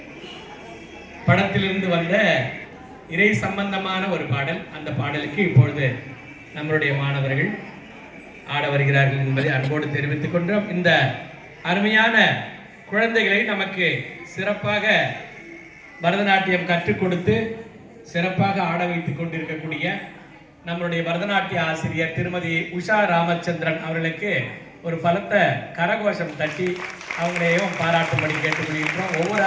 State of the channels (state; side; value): identical; both; correlation 1.00